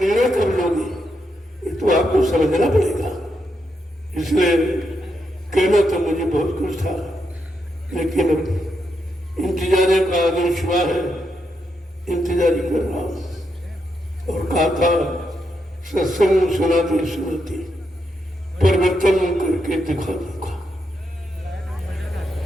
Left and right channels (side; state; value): both; normal; correlation 0.82